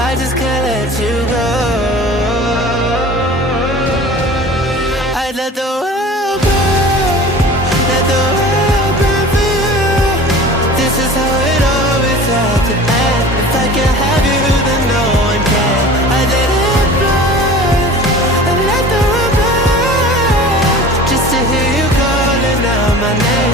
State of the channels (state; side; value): normal; both; correlation 0.40